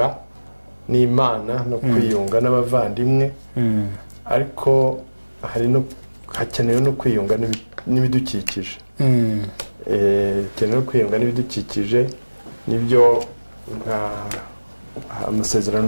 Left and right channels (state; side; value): inverted; both; correlation -1.00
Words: n'Imana no kwiyunga n'abavandimwe, ariko hakenewe no kwiyunga n'ibidukikije. Hakenewe kwiyunga n'ibidukikije, nibyo amasezerano